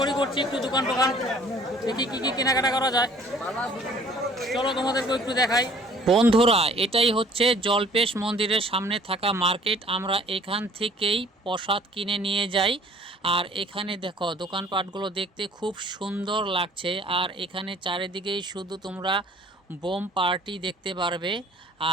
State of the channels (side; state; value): both; normal; correlation 0.54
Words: করছি, একটু দোকান টোকান দেখি কি কি কেনাকাটা করা যায়। চলো তোমাদেরকে একটু দেখাই। বন্ধুরা, এটাই হচ্ছে জলপেশ মন্দিরের সামনে থাকা মার্কেট। আমরা এখান থেকেই প্রসাদ কিনে নিয়ে যাই। আর এখানে দেখো দোকানপাটগুলো দেখতে খুব সুন্দর লাগছে। আর এখানে চারিদিকেই শুধু তোমরা বোম পার্টি দেখতে পারবে।